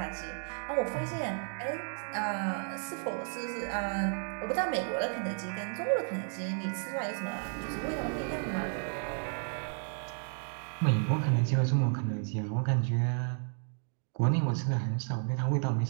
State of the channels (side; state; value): left; silent; 56 dB below the other